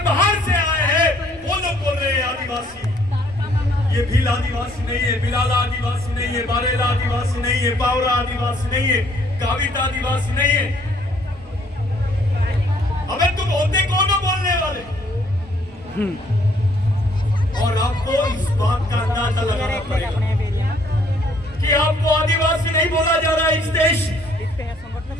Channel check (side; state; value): right; noise; rumble, 24 dB below the sound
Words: बाहर से आए हैं वो लोग बोल रहे हैं आदिवासी। ये भील आदिवासी नहीं है, बिलाला आदिवासी नहीं है, बारेला आदिवासी नहीं है, बावरा आदिवासी नहीं है, गावित आदिवासी नहीं है। अबे तुम होते कौन हो बोलने वाले? और आपको इस बात का अंदाजा लगाना पड़ेगा कि आपको आदिवासी नहीं बोला जा रहा है। इस देश